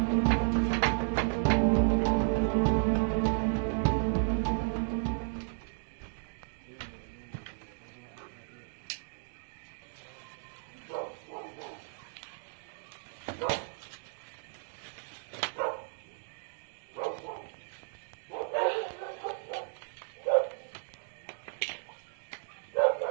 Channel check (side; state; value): left; silent; digital silence